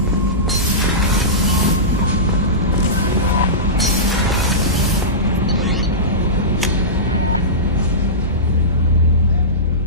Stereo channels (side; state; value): both; normal; correlation -0.18